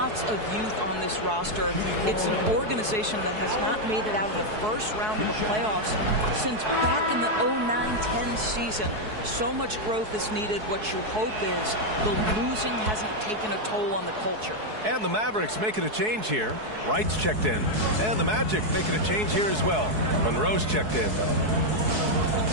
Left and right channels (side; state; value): left; late; 4.7 ms